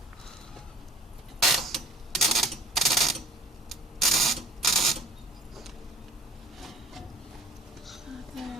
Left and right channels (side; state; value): both; normal; correlation 0.45